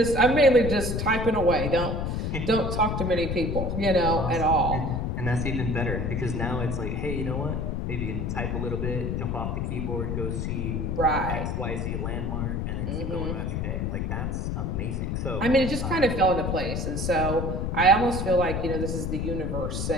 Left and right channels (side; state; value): left; noise; rumble, 1 dB below the sound